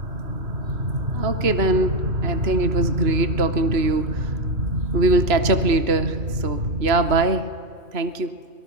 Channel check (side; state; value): left; late; 2.9 ms